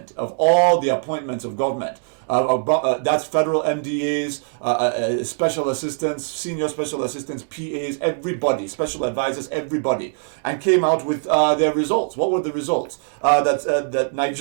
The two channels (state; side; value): silent; left; digital silence